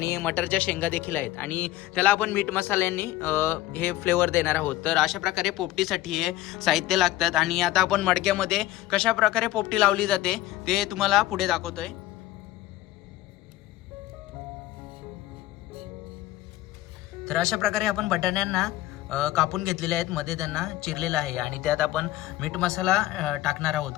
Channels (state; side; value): quieter; right; 15.8 dB